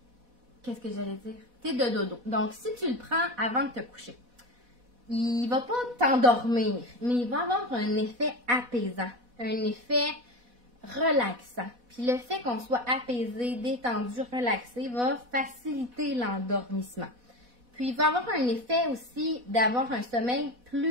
Qu'est-ce que j'allais dire? Thé de dodo. Donc, si tu le prends avant de te coucher, il ne va pas t'endormir, mais il va avoir un effet apaisant, un effet relaxant. Puis le fait qu'on soit apaisé, détendu, relaxé va faciliter l'endormissement. Puis il va avoir un effet aussi d'avoir un sommeil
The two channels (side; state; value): left; late; 4.1 ms